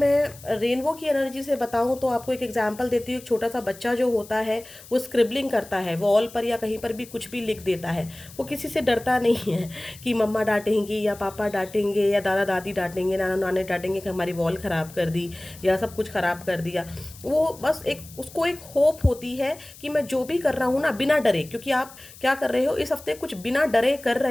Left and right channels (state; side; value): noise; left; hiss, 19 dB below the sound